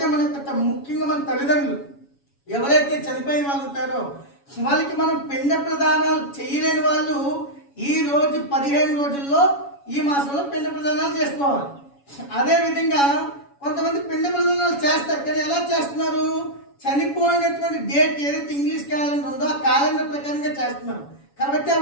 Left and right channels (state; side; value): late; right; 7.1 ms